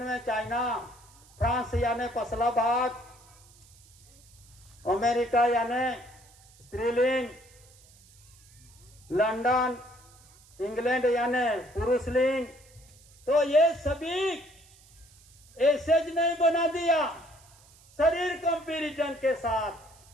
चाइना, फ्रांस यानी पसला भाग, अमेरिका यानी स्त्रीलिंग, लंदन, इंग्लैंड यानी पुरुषलिंग। तो ये सभी ऐसे ज नहीं बना दिया शरीर कंपैरिजन के साथ,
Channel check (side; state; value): right; noise; hiss, 26 dB below the sound